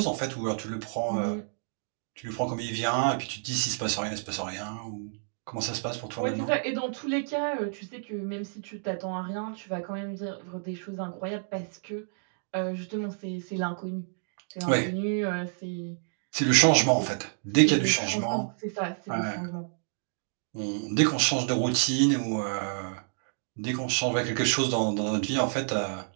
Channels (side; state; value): left; silent; digital silence